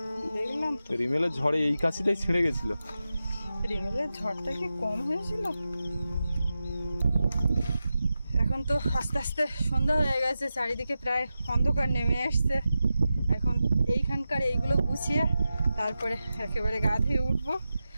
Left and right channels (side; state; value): both; inverted; correlation -0.92